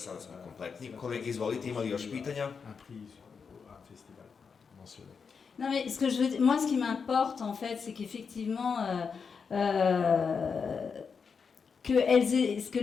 smo kompletni. Kolege, izvolite, imali još pitanja? Non mais ce qui m'importe en fait, c'est qu'effectivement que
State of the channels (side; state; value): right; quieter; 5.8 dB